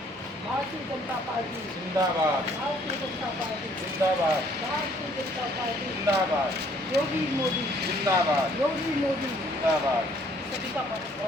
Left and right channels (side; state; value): both; normal; correlation 0.62